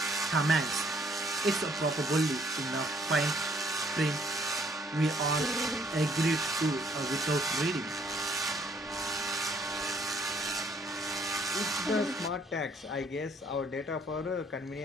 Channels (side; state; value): both; normal; correlation 0.64